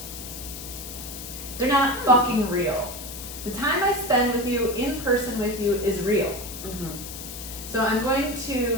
They're not fucking real. The time I spend with you, in person with you, is real. Mhm. So I'm going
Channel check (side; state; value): left; noise; hiss, 10 dB below the sound